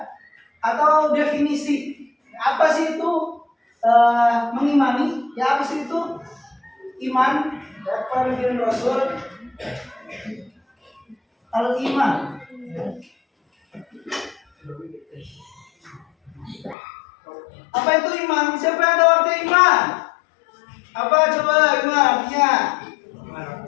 atau definisi. Apa sih itu mengimani? Ya, apa sih itu iman? Ya, kepada Nabi dan Rasul. Al-iman. Apa itu iman? Siapa yang tahu arti iman? Apa coba iman artinya?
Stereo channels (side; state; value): right; drops out; at 16.8 s